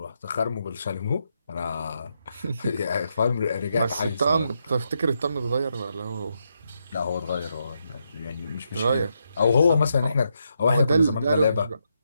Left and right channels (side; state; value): both; inverted; correlation -0.81